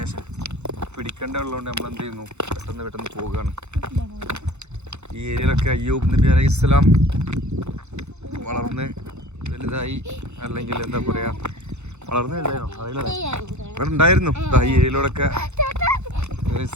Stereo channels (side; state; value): left; late; 0.82 ms